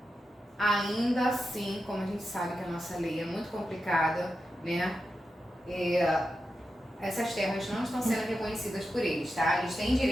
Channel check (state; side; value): normal; both; correlation 0.89